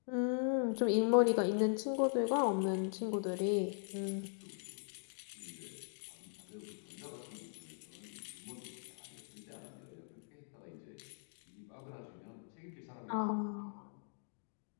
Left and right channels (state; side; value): silent; right; digital silence